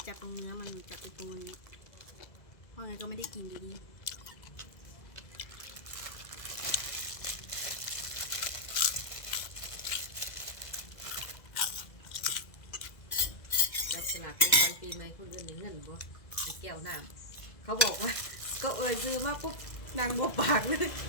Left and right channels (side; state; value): right; late; 2.0 ms